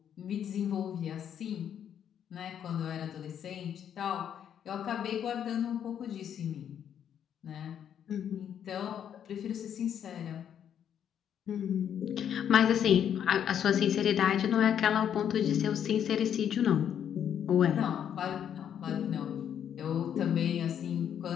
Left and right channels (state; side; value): quieter; right; 9.1 dB